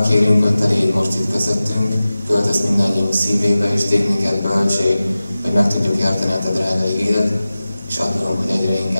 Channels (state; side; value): inverted; both; correlation -0.96